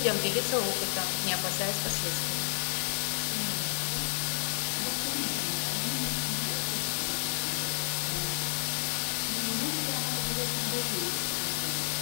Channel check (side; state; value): right; silent; digital silence